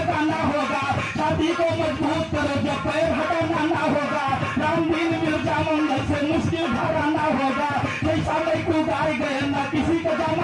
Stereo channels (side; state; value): both; identical; correlation 1.00